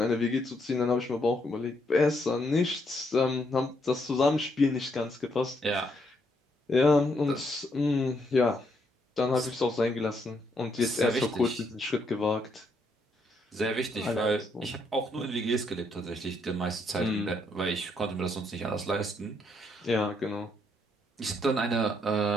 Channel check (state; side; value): normal; both; correlation 0.74